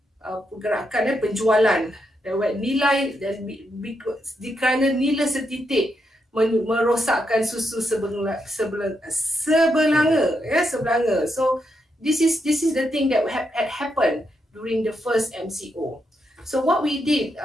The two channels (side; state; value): both; normal; correlation 0.82